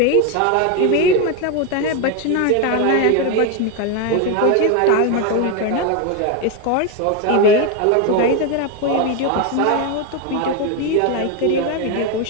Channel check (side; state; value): both; different; correlation 0.02